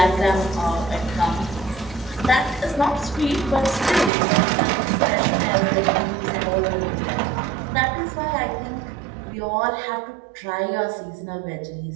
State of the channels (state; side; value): drops out; left; at 4.1 s